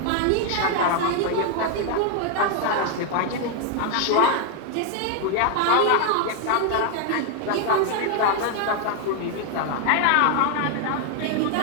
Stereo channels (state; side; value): different; both; correlation 0.00